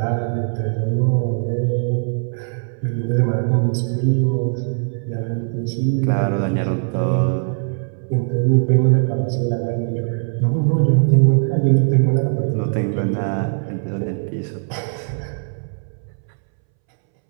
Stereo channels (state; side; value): silent; left; 66 dB below the other